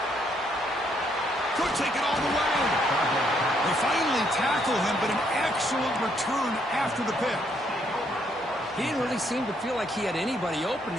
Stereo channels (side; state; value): both; normal; correlation 0.71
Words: Could take it all the way. They finally tackle him, but an excellent return after the pick. He didn't really seem to feel like he had anybody open.